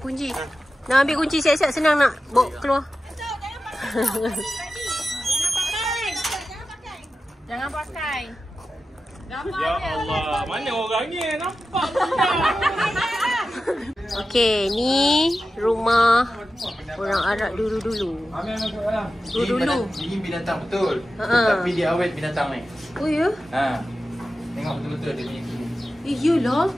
Nak ambil kunci siap-siap, senang nak bawa keluar. Jangan pakai. Ya Allah, mana orangnya? Nampak Okey, ni rumah orang Arab dulu-dulu. Ini binatang betul. Tapi dia awet binatang ni. Oh ya? Tengok betul-betul dia punya. Iyalah.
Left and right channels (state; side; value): normal; both; correlation 0.93